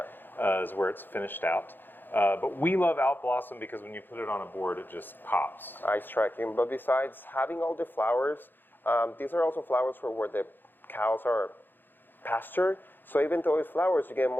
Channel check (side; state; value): right; late; 0.095 ms